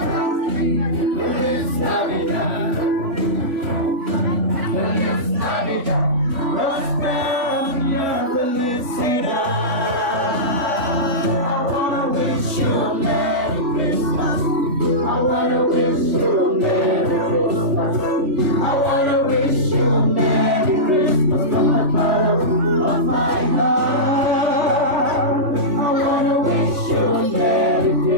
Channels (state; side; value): late; left; 3.5 ms